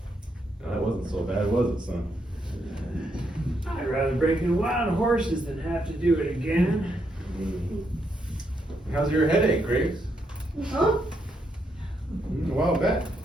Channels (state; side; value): normal; both; correlation 0.78